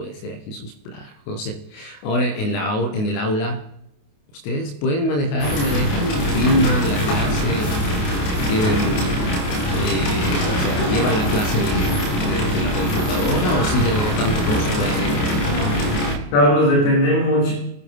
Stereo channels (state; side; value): late; right; 28 ms